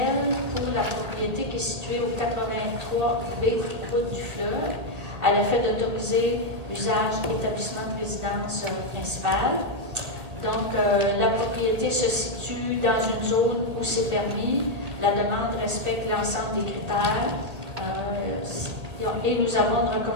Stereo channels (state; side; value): late; left; 2.0 ms